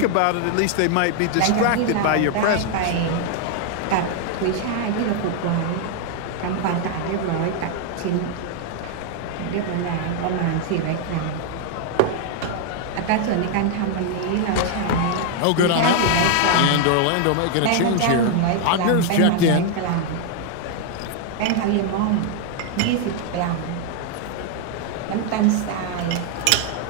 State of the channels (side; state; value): both; different; correlation 0.00